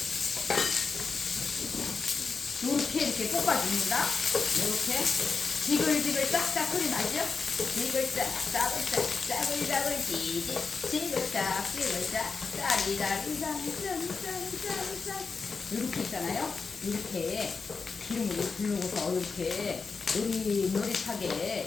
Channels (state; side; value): quieter; right; 4.8 dB